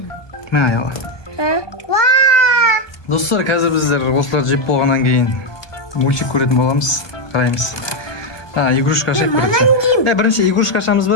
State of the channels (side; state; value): right; late; 1.2 ms